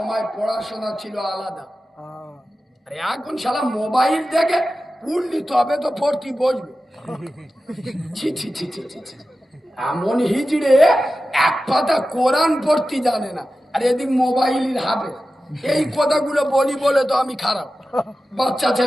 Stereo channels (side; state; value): both; normal; correlation 0.94